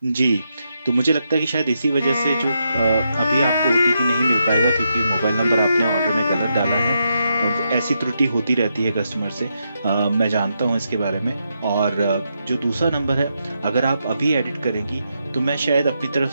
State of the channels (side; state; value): both; inverted; correlation -0.82